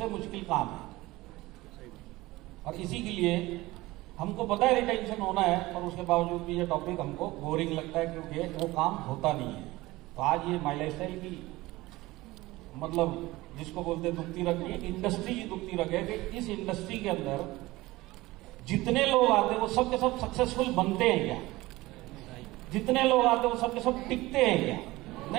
मुश्किल काम है। और इसी के लिए हमको पता है रिटेंशन होना है, पर उसके बावजूद भी ये टॉपिक हमको बोरिंग लगता है क्योंकि वो काम होता नहीं है। तो आज ये माई लाइफस्टाइल की मतलब जिसको बोलते हैं दुखती रग, ये इंडस्ट्री की दुखती रग है कि इस इंडस्ट्री के अंदर जितने लोग आते हैं वो सब के सब सक्सेसफुल बनते हैं क्या? जितने लोग आते हैं वो सब के सब टिकते हैं क्या?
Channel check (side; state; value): left; quieter; 19.4 dB